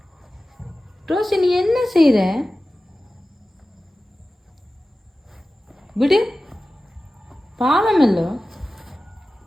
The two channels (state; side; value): normal; both; correlation 0.95